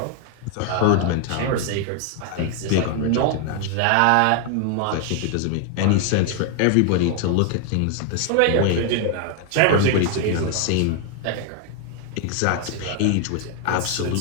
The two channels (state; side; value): different; both; correlation 0.01